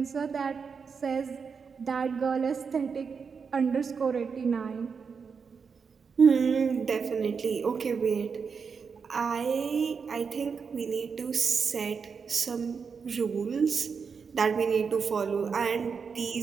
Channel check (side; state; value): left; quieter; 5.8 dB